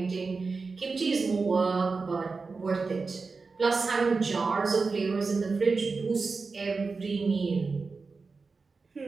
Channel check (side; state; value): left; quieter; 4.3 dB